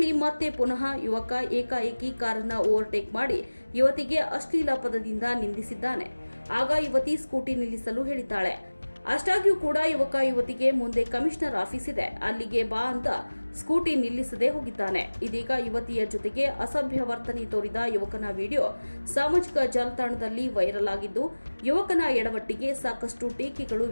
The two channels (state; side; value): inverted; both; correlation -1.00